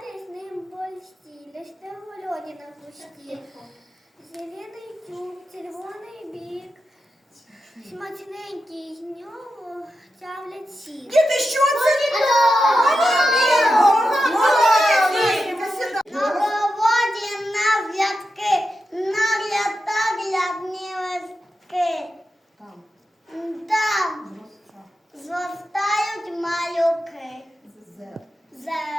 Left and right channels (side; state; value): both; normal; correlation 0.90